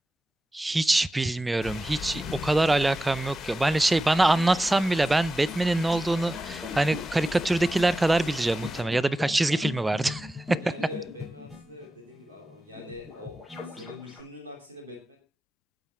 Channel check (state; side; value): normal; both; correlation 0.94